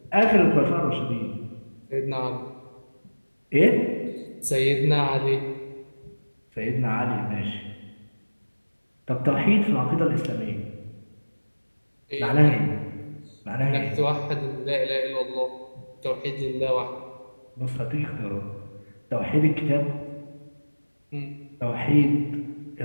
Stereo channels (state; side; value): inverted; both; correlation -1.00